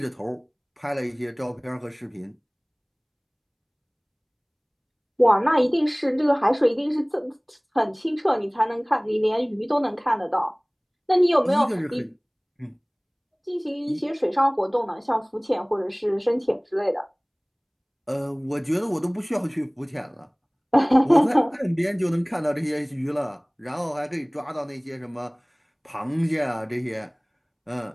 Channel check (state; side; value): identical; both; correlation 1.00